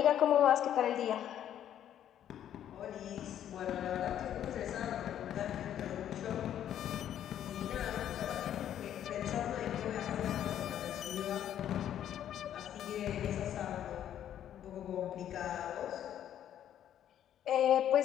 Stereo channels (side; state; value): right; quieter; 10.6 dB